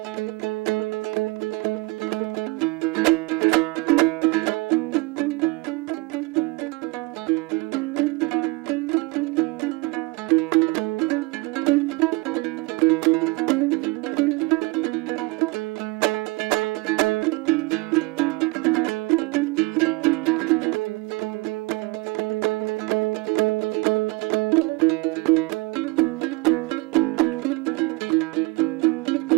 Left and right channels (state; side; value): quieter; left; 23.6 dB